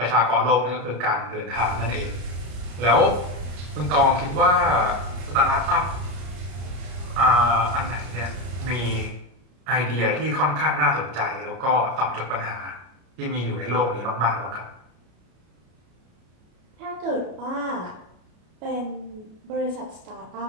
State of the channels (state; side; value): late; left; 33 ms